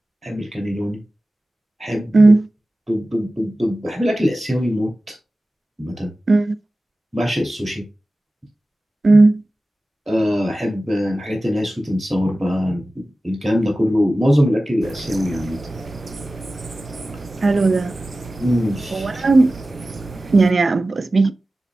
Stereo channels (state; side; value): normal; both; correlation 0.96